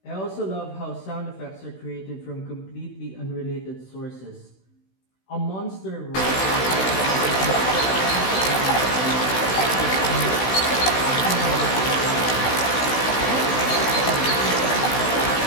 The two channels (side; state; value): right; late; 16 ms